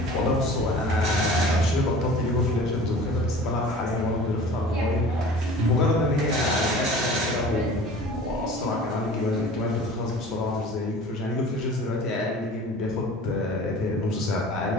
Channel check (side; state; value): both; normal; correlation 0.42